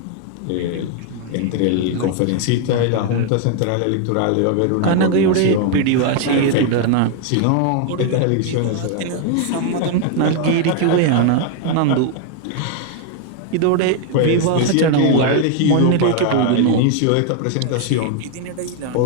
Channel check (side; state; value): both; different; correlation 0.00